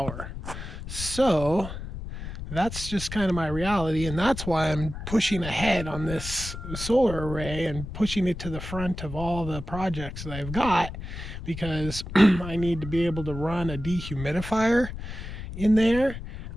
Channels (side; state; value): left; noise; rumble, 9 dB below the sound